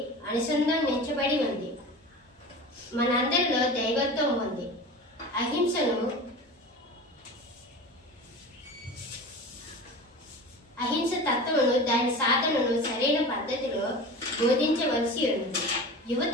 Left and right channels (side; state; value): both; normal; correlation 0.33